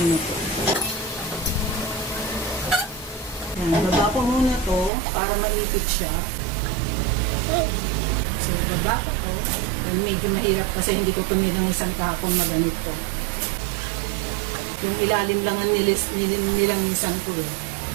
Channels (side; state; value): left; drops out; at 4.9 s